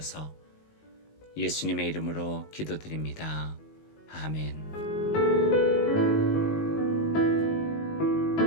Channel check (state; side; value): late; right; 19 ms